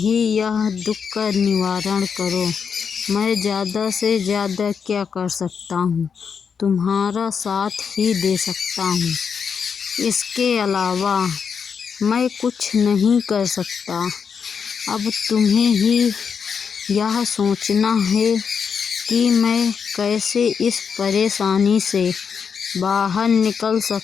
यह दुख का निवारण करो। मैं ज़्यादा से ज़्यादा क्या कर सकता हूँ? तुम्हारा साथ ही दे सकता हूँ। इसके अलावा मैं कुछ नहीं कर सकता। अब तुम्हें ही यह सोचना है कि मैं कैसे इस परेशानी से बाहर निकल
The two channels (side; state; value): right; quieter; 6.5 dB